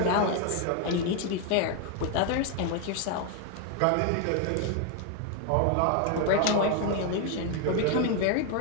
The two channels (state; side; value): different; both; correlation 0.01